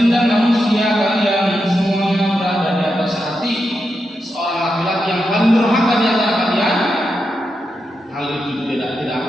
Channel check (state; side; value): normal; both; correlation 0.86